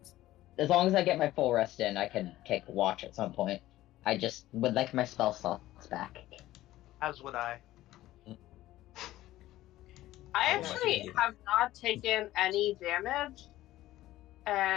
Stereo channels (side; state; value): right; quieter; 15.5 dB